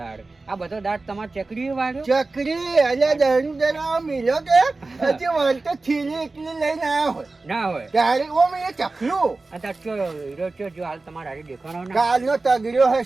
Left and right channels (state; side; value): quieter; left; 3.5 dB